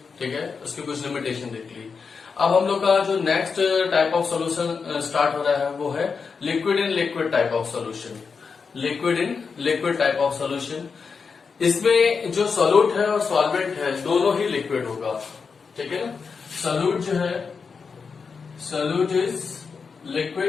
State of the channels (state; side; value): quieter; right; 5.4 dB